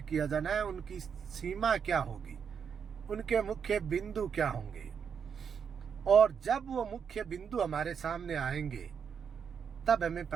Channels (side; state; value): left; quieter; 7.0 dB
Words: किया जाना है, उनकी सीमा क्या होगी, उनके मुख्य बिंदु क्या होंगे। और जब वो मुख्य बिंदु हमारे सामने आएंगे तब हमें